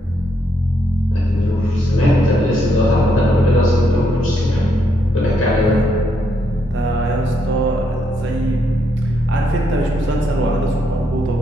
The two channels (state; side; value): normal; both; correlation 0.76